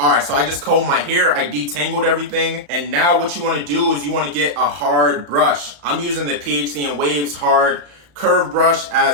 so I just combed my hair, I detangled everything, and now what you want to do is you want to get a hard brush. I'm using the PhD in Waves hard curve brush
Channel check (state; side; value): late; left; 35 ms